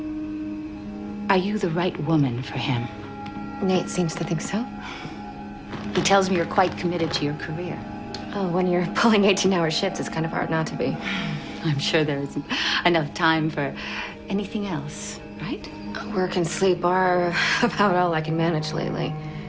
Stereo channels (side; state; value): both; identical; correlation 1.00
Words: are you the right woman for him? Nate seems to think so. He tells me you're quite committed to your career. Oh, when you're pulling 18-hour shifts, it's kind of hard not to be. I'm sure there isn't enough time for anything else, right? Work and sleep are about all I can manage lately.